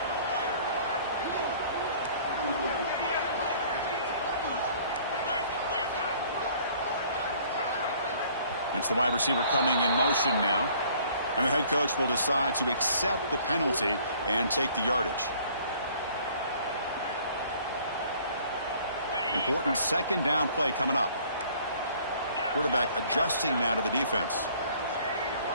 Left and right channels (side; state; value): both; inverted; correlation -0.56